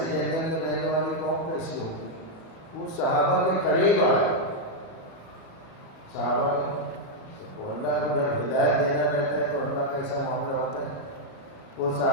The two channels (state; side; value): late; right; 37 ms